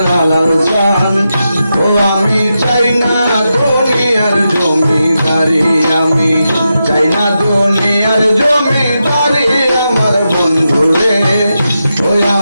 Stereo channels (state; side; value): inverted; both; correlation -0.88